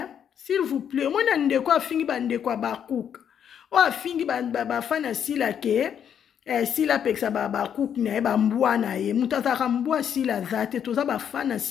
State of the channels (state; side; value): quieter; right; 8.6 dB